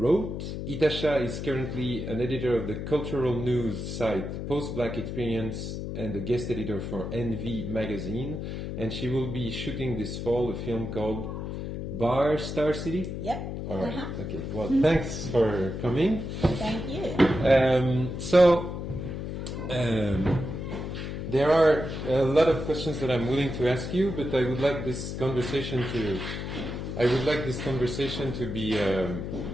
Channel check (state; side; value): noise; left; hum, 5 dB below the sound